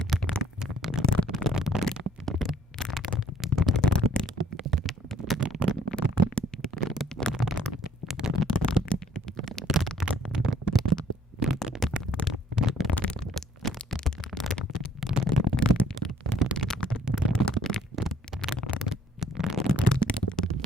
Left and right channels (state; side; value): normal; both; correlation 0.61